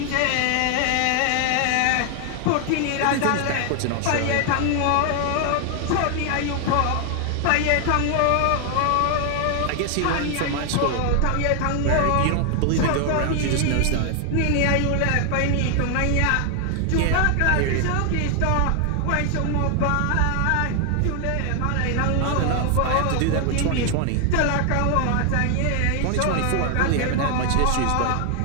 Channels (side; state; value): both; different; correlation 0.00